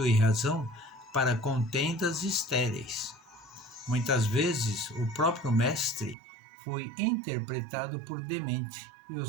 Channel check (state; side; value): drops out; left; at 6.2 s